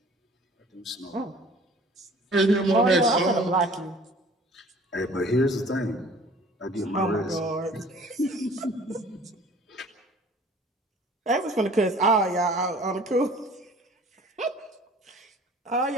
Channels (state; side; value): normal; both; correlation 0.49